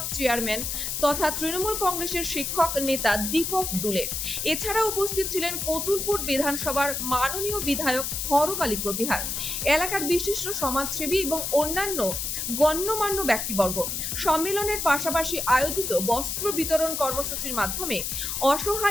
chairman তথা তৃণমূল কংগ্রেসের শিক্ষক নেতা দীপক দুলে। এছাড়া উপস্থিত ছিলেন কতুলপুর বিধানসভার মাননীয় বিধায়ক হরকালী প্রতিহার, এলাকার বিশিষ্ট সমাজসেবী এবং অন্যান্য গণ্যমান্য ব্যক্তিবর্গ। সম্মেলনের পাশাপাশি আয়োজিত বস্ত্র বিতরণ কর্মসূচির মাধ্যমে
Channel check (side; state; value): left; noise; hiss, 3 dB below the sound